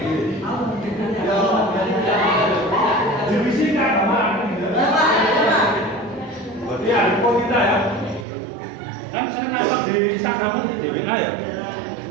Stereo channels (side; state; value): left; drops out; at 8.2 s